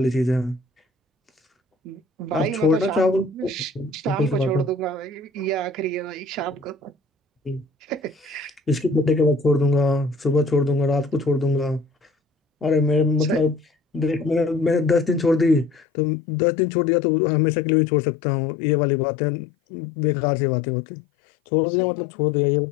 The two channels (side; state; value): right; drops out; at 15.9 s